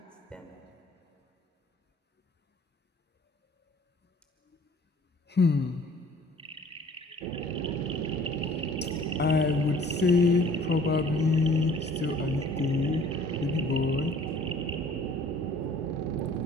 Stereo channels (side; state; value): both; normal; correlation 0.53